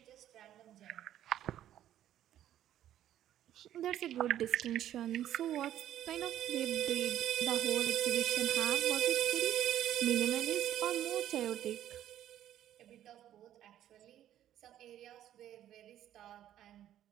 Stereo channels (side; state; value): left; quieter; 11.8 dB